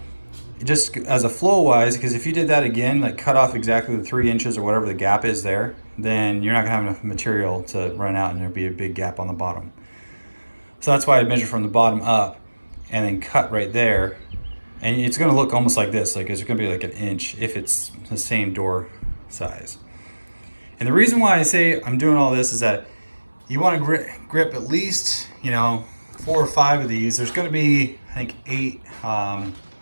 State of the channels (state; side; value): inverted; both; correlation -1.00